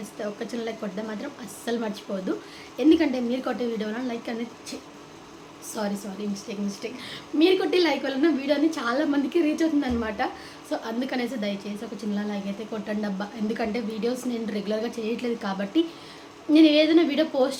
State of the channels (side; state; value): both; identical; correlation 1.00